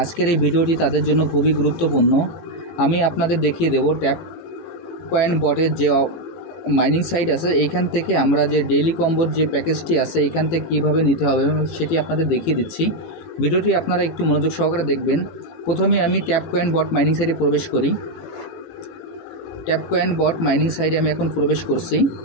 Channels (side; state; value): right; late; 18 ms